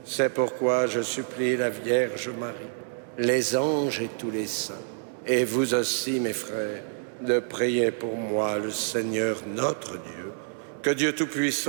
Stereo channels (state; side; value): silent; left; digital silence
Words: C'est pourquoi je supplie la Vierge Marie, les anges et tous les saints, et vous aussi, mes frères, de prier pour moi, le Seigneur notre Dieu. Que Dieu